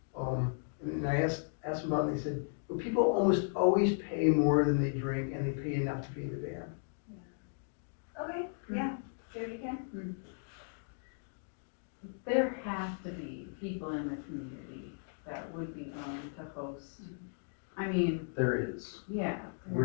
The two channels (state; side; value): silent; right; digital silence